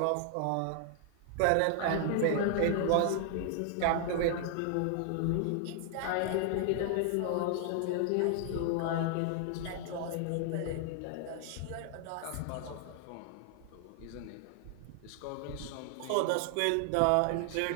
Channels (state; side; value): different; both; correlation 0.00